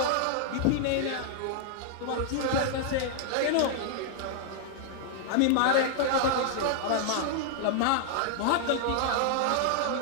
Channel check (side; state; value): both; different; correlation 0.00